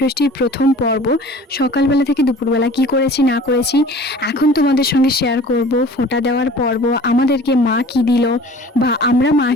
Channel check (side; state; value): both; normal; correlation 0.45